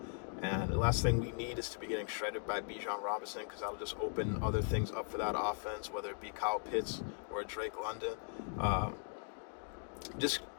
And the last thing we need is to be getting shredded by Bijan Robinson, because that'll just open other things up for that offense, whether it be Kyle Pitts or Drake London.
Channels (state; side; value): silent; right; 52 dB below the other